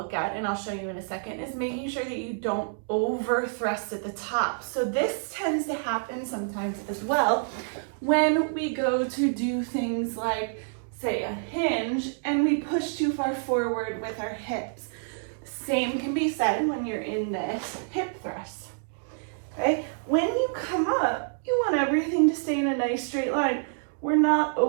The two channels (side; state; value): left; silent; digital silence